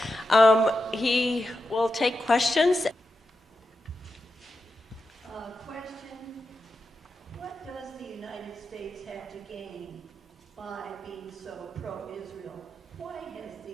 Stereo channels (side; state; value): both; normal; correlation 0.89